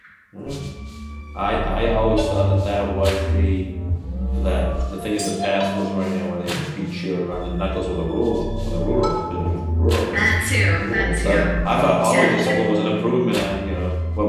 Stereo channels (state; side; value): identical; both; correlation 1.00